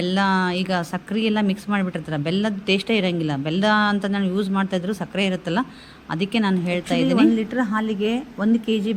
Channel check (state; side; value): identical; both; correlation 1.00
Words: ಈಗ ಸಕ್ಕರೆ ಎಲ್ಲ ಮಿಕ್ಸ್ ಮಾಡಿಬಿಟ್ಟಿರ್ತಾರೆ, ಬೆಲ್ಲದ ಟೇಸ್ಟೇ ಇರೋಂಗಿಲ್ಲ. ಬೆಲ್ಲ ಅಂತ ನಾನು ಯೂಸ್ ಮಾಡ್ತಾಯಿದ್ರು, ಸಕ್ಕರೆ ಇರುತ್ತಲ್ಲ, ಅದಕ್ಕೆ ನಾನು ಹೇಳ್ತಾ ಇದ್ದೀನಿ. 1 ಲೀಟ್ರ್ ಹಾಲಿಗೆ 1 kg